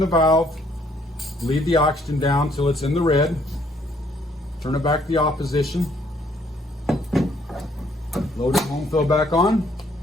valve, leave the oxygen down till it's in the red, turn it back to the opposition, load the home fill back on,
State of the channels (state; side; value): normal; both; correlation 0.66